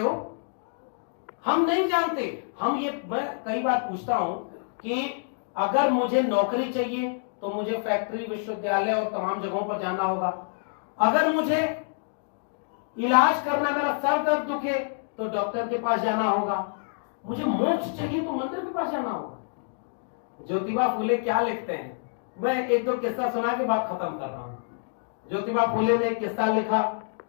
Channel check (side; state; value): right; silent; digital silence